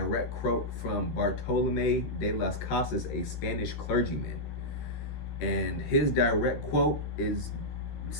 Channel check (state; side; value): late; right; 13 ms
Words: quote from Bartolomé de las Casas, a Spanish clergyman. And his direct quote